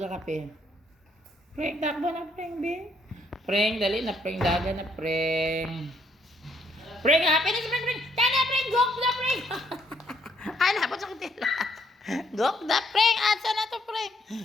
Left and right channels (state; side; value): normal; both; correlation 0.70